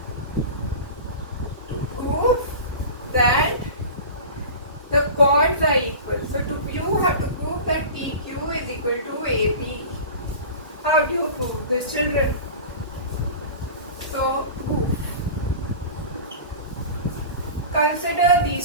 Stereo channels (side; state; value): both; inverted; correlation -0.34